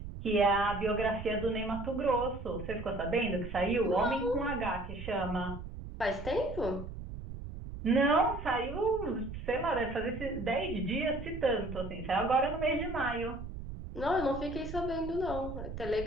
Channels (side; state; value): right; noise; rumble, 9 dB below the sound